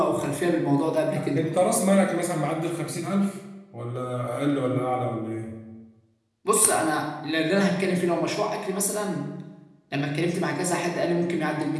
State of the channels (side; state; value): both; identical; correlation 1.00